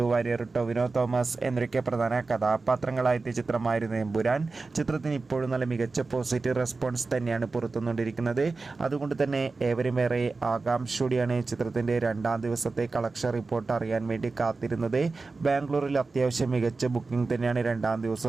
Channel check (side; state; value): left; quieter; 3.9 dB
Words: വാര്യർ, ടൊവിനോ തോമസ് എന്നൊക്കെ പ്രധാന കഥാപാത്രങ്ങളായെത്തിയ ചിത്രമായിരുന്നു എമ്പുരാൻ. ചിത്രത്തിന് ഇപ്പോഴും നല്ല മികച്ച പോസിറ്റീവ് റെസ്പോൺസ് തന്നെയാണ് പുറത്തുനിന്നുകൊണ്ടിരിക്കുന്നത്. അതുകൊണ്ട് തന്നെ ഏവരുമേറെ ആകാംക്ഷയോടെയാണ് ചിത്രത്തിൻ്റെ രണ്ടാം ദിവസത്തെ കളക്ഷൻ റിപ്പോർട്ട് അറിയാൻ വേണ്ടി കാത്തിരുന്നത്. ബാംഗ്ലൂരിൽ അത്യാവശ്യം മികച്ച ബുക്കിംഗ് തന്നെയാണ് രണ്ടാം